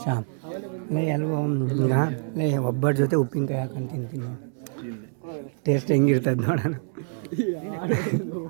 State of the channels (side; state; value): left; silent; digital silence